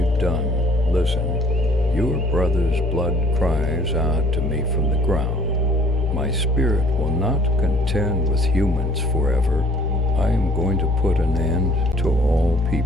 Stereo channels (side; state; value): both; normal; correlation 0.58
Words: done? Listen, your brother's blood cries out to me from the ground. My spirit will not contend with humans forever. I am going to put an end to all